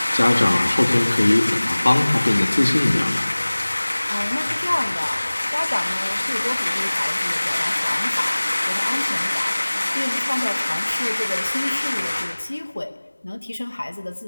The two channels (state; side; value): inverted; both; correlation -1.00